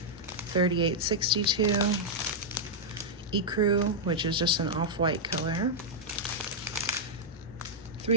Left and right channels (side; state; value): both; normal; correlation -0.05